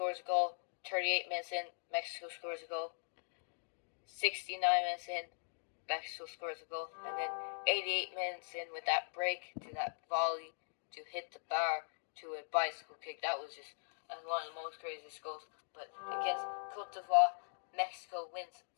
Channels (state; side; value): silent; right; digital silence